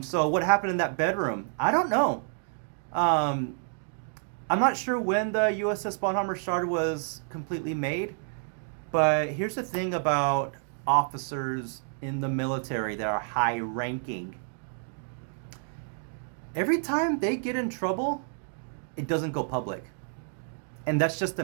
So what happened in that bedroom? I don't know. I'm not sure when the USS Bonhammer Star was completely made, but here's the thing about officers in the military that are high ranking. Every time they get in trouble, it doesn't go public. And that's just to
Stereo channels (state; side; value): silent; left; 59 dB below the other